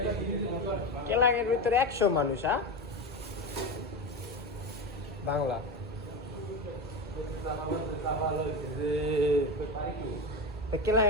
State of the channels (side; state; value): both; normal; correlation 0.20